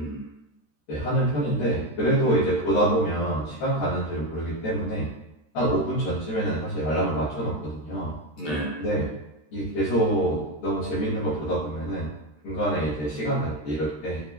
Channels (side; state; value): right; late; 13 ms